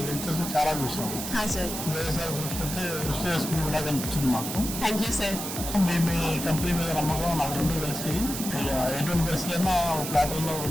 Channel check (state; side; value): noise; right; hiss, 6 dB below the sound